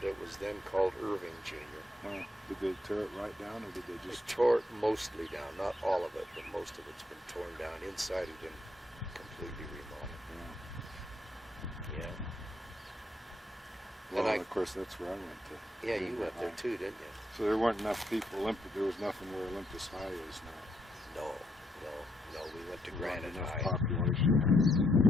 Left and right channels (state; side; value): normal; both; correlation 0.76